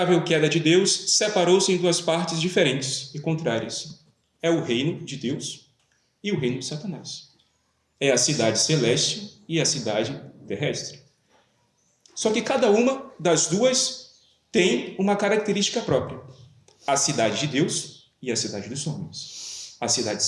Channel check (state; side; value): identical; both; correlation 1.00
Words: queda de Deus, separou-se em duas partes diferentes e contrárias. É o reino de Deus e o reino de Satanás. É a cidade celeste e a cidade terrestre. Só que cada uma das duas tem uma característica própria. A cidade de Deus e a cidade dos homens. A cidade